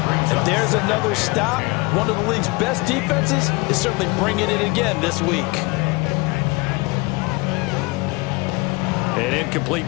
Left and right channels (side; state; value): right; quieter; 25.3 dB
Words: And there's another stop. One of the league's best defenses is certainly bringing it again this week. An